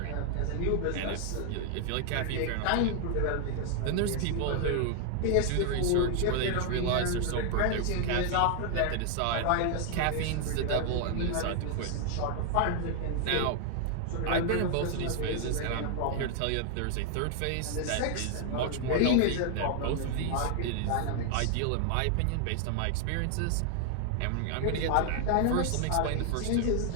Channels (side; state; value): both; different; correlation 0.00